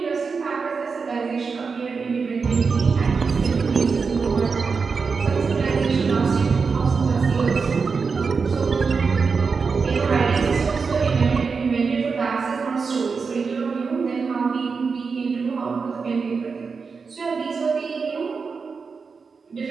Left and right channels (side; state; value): left; quieter; 5.1 dB